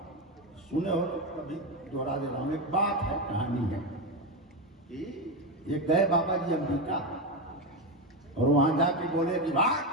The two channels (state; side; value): normal; both; correlation 0.13